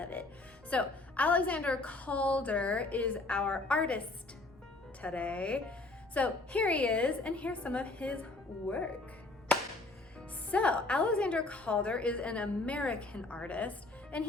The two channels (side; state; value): right; quieter; 3.1 dB